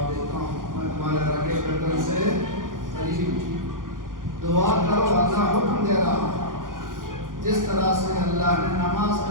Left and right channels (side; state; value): left; late; 0.90 ms